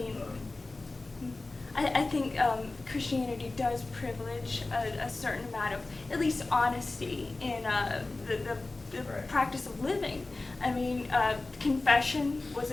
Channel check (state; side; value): quieter; right; 3.2 dB